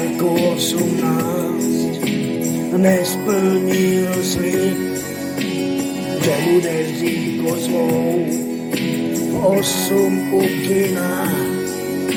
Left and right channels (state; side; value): identical; both; correlation 1.00